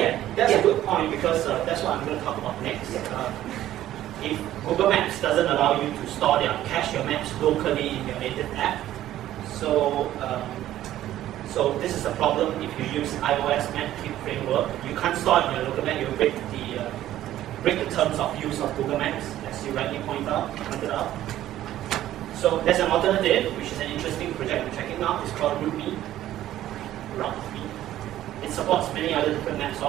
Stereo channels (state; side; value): quieter; left; 13.3 dB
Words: that's a good point, because that's what I'm going to talk about next. If Google Maps doesn't allow you to cache your maps locally in your native app, so this is a problem if you use iOS map kit framework. You can't store it in your local map, you break the terms of use of Google Maps, as you rightly pointed out. So there's an alternative, which is an interesting project we're checking out. It's called RootMe. It supports many other different map